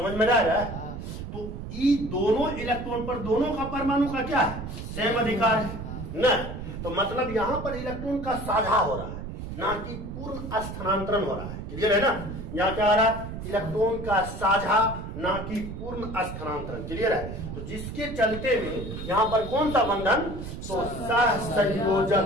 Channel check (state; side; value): noise; right; rumble, 8 dB below the sound